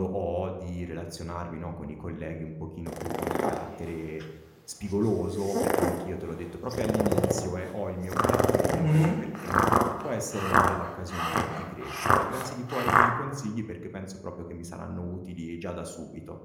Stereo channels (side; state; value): both; identical; correlation 1.00